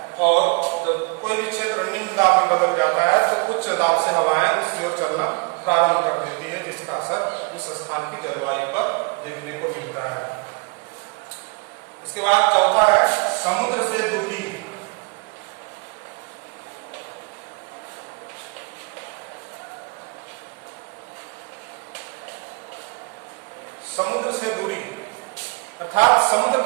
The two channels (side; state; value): left; quieter; 32.5 dB